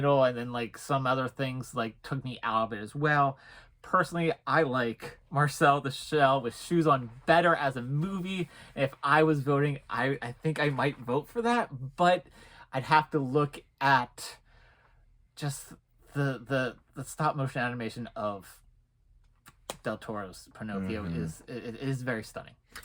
and then like some other things like took me out of it as well. Personally, I like Marcel the Shell with Shoes On better as a movie. If I was voting, I think I might vote for that, but I'd have to look at just the stop motion animation of Del Toro's Pinocchio is very stunning.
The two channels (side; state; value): both; identical; correlation 1.00